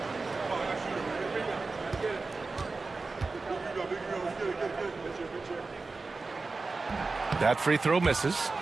That free throw misses.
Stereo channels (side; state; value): left; quieter; 3.9 dB